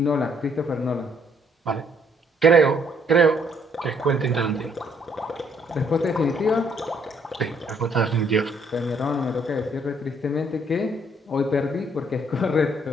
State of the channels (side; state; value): both; normal; correlation 0.66